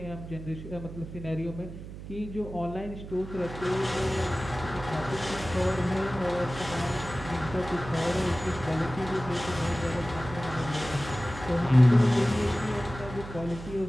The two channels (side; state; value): right; noise; hum, 12 dB below the sound